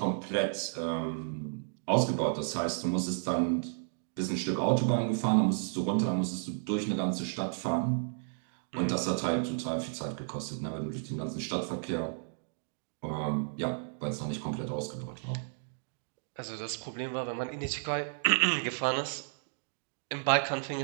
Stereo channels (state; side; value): silent; left; digital silence